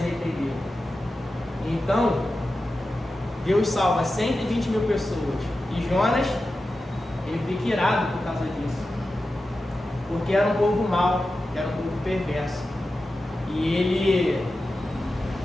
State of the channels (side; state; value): both; normal; correlation 0.92